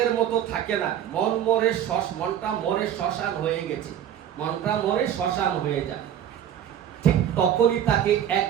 মতো থাকে না। মনটা মরে শ্মশান হয়ে গেছে, মনটা মরে শ্মশান হয়ে যায়। ঠিক তখনই তাকে এক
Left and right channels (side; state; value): left; quieter; 10.1 dB